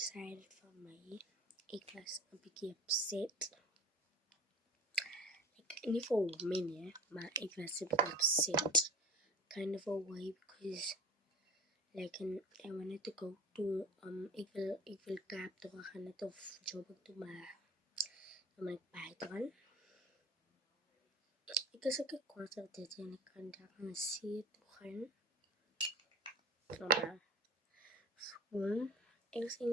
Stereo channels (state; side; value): normal; both; correlation 0.38